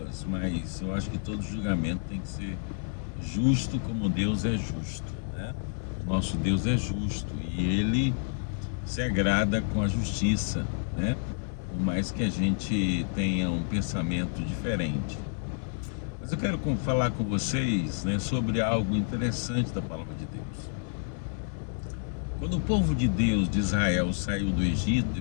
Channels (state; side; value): silent; right; digital silence